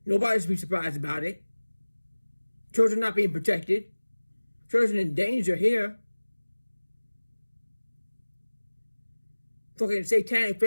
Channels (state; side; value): inverted; both; correlation -1.00